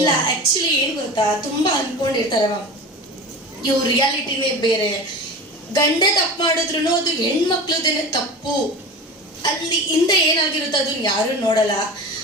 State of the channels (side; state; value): both; normal; correlation 0.33